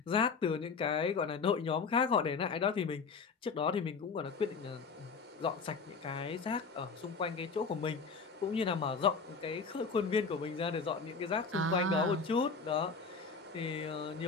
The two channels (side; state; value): right; quieter; 4.9 dB